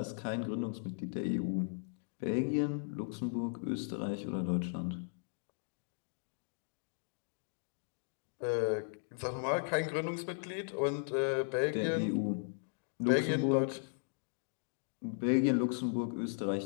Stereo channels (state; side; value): silent; right; digital silence